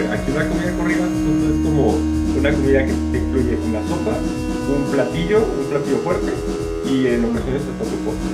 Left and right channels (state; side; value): identical; both; correlation 1.00